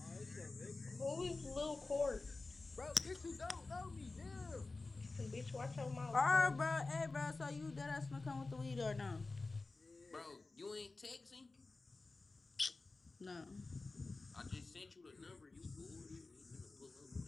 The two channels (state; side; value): quieter; right; 3.5 dB